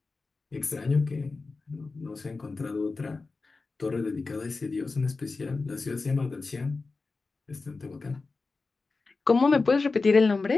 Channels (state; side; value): quieter; right; 3.9 dB